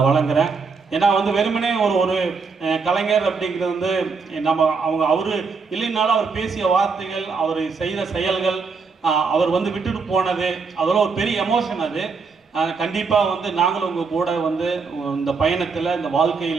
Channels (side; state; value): left; quieter; 4.9 dB